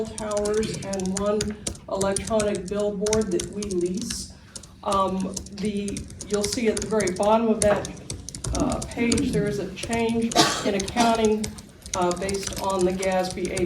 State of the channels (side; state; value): both; identical; correlation 1.00